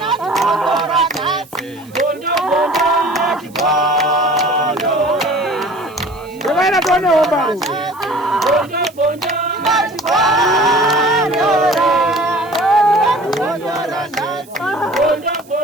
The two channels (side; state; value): right; noise; hiss, 26 dB below the sound